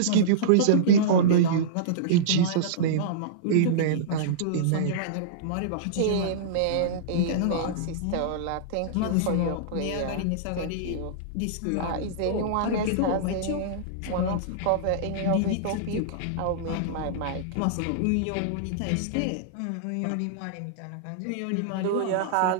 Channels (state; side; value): different; both; correlation -0.03